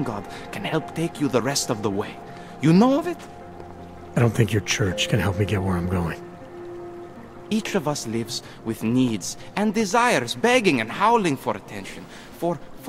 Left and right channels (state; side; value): identical; both; correlation 1.00